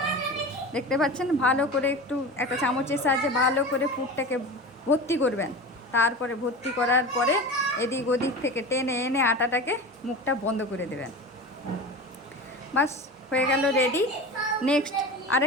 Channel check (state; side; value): normal; both; correlation 0.30